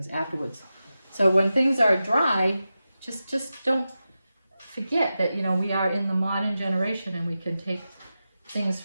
afterwards. So when things are dry, just don't forget that, you know, we are in the modern generation and we can take things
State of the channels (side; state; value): both; inverted; correlation -0.92